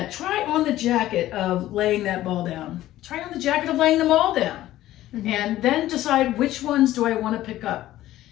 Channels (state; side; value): quieter; right; 14.6 dB